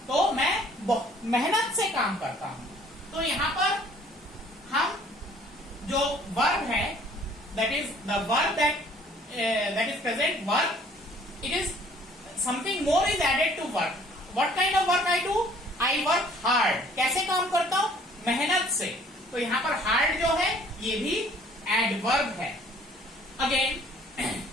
तो मैं मेहनत से काम करता हूं. तो यहां पर हम जो वर्ब है, that is the verb that is present verb, it is something more is added to work. What kind of work I do? I work hard. कैसे काम करता हूं? मेहनत से. तो यहां पर हार्ड जो है ये भी एडवर्ब है. Again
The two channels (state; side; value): normal; both; correlation 0.57